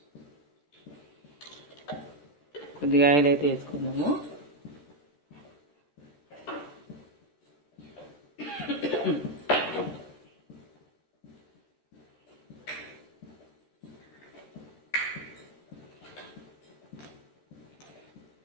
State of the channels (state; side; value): late; right; 14 ms